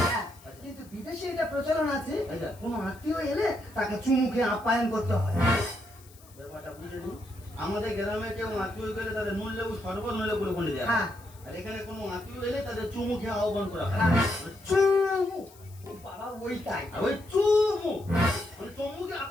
হ্যাঁ, কিন্তু বিদেশে এটা প্রচলন আছে আচ্ছা। কোনো আত্মীয় এলে তাকে চুমুকে আপ্যায়ন করতে হয় ব্যাপারটা বুঝে নি আমাদের গ্রামে কেউ আত্মীয় গেলে তাদের নুন লেবু শরবত নইলে গুলোকন্ডে দেওয়া হ্যাঁ। হয় আর এখানে কোনো আত্মীয় এলে তাদের চুমু খেয়ে আহ্বান করা হয় হ্যাঁ, চুমু ও বাবা ওইটাই আর ওই চুমু মানে চুমুকে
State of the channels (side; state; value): left; noise; hiss, 24 dB below the sound